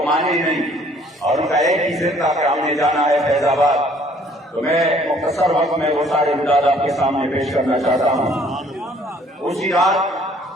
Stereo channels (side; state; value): both; normal; correlation 0.59